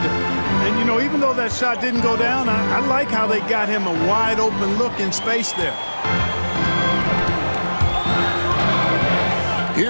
And, you know, even though that shot didn't go down, I like how they got him a wide open look in space there.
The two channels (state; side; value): inverted; both; correlation -1.00